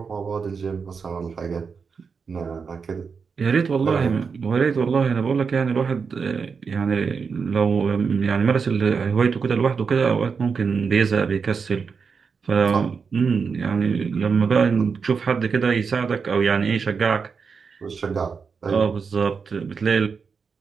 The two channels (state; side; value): quieter; left; 5.6 dB